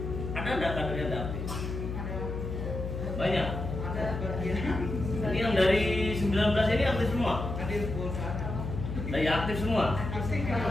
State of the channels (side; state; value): left; noise; hum, 5 dB below the sound